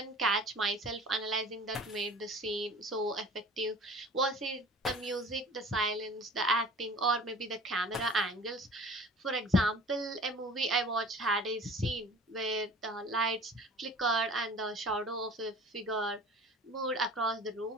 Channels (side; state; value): both; normal; correlation 0.44